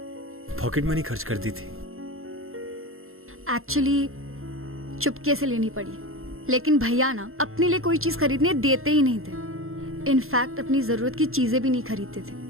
पॉकेट मनी खर्च कर दी थी। एक्चुअली चुपके से लेनी पड़ी, लेकिन भैया ना अपने लिए कोई चीज खरीदने देते ही नहीं थे। इनफैक्ट अपनी जरूरत की चीजें भी नहीं खरीदते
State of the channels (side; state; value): left; late; 0.61 ms